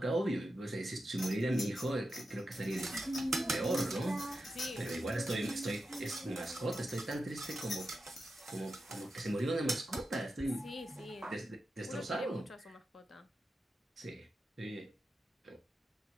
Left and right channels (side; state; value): both; normal; correlation 0.89